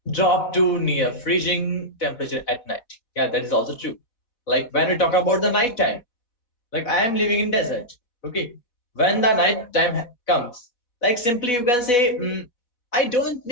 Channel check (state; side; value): late; right; 4.1 ms